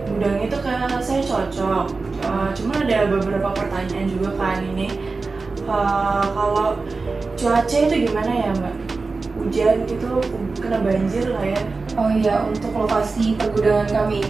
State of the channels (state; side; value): quieter; left; 4.0 dB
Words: gudang itu kayak saya cocok. Cuma ada beberapa pertanyaan juga kan ini. Kalau cuaca itu gimana ya Mbak? Hujan gitu, kena banjir lah ya? Oh iya, untuk lokasi pergudangan kami